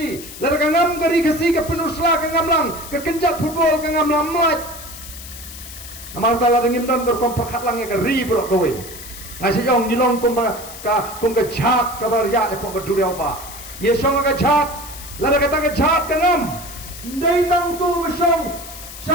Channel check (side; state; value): left; noise; hiss, 14 dB below the sound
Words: lar ka ngam kari kasi ka penusla ka ngamlang ka kenjat football ka ngamlang mat amal tala dengim don berkomperkat lang ka ri bro kowe ngasi jong jilong kumba ka jhat ka bar ya e pok duriau ba ye song ka jhat lada kata ke jahat kenam ndai tang tu besong